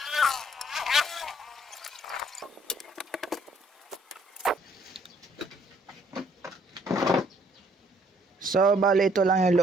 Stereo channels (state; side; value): normal; both; correlation 0.64